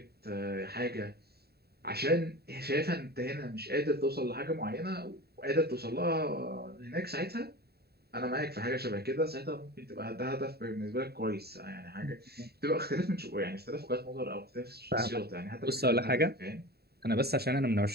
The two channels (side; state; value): left; late; 0.46 ms